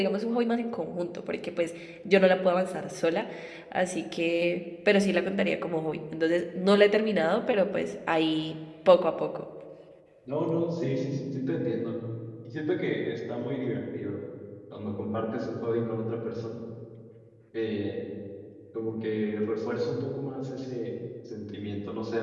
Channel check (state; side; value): identical; both; correlation 1.00